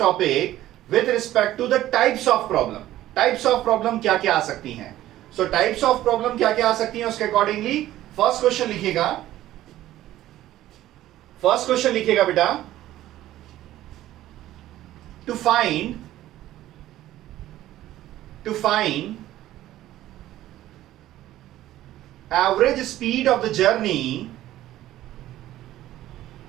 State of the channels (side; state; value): left; quieter; 14.2 dB